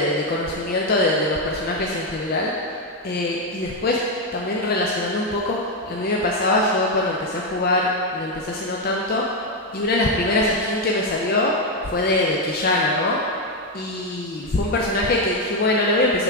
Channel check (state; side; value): normal; both; correlation 0.05